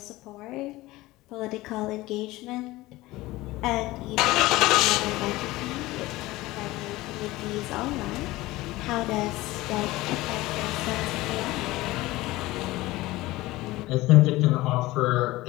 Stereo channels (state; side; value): quieter; right; 18.8 dB